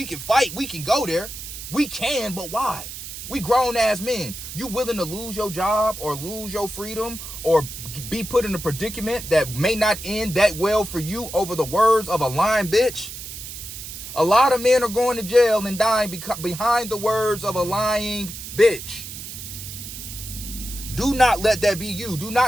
can fight. We can go there. We can, but why? We grown ass men. You willing to lose your job or lose your freedom or be put in a predicament that may not end that well for you over the words of a lying bitch? A lot of men are going to jail and dying behind the words of a lying bitch. Do not let that be you. Do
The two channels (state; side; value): noise; right; hiss, 10 dB below the sound